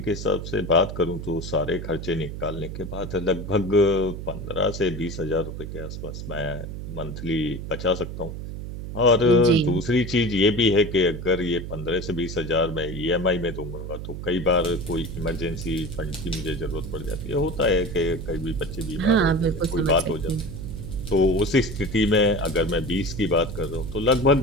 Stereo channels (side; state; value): right; noise; hum, 8 dB below the sound